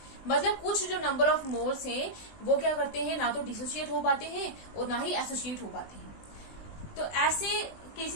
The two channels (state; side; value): late; right; 20 ms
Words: मतलब कुछ जो नंबर ऑफ मोल्स हैं वो क्या करते हैं, ना तो डिसोसिएट हो पाते हैं और ना ही एसोसिएट हो पाते हैं। तो ऐसे